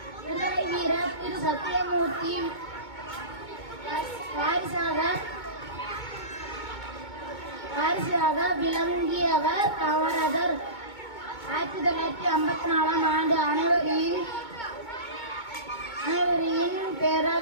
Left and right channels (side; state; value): right; late; 2.2 ms